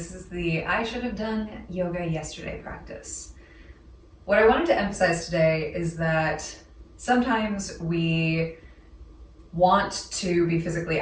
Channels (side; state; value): both; identical; correlation 1.00